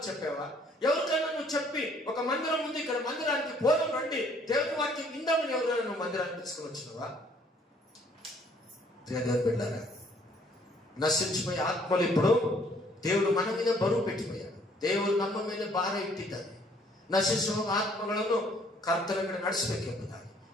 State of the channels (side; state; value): both; normal; correlation 0.61